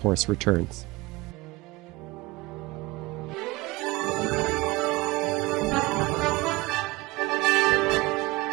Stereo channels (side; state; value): left; quieter; 21.6 dB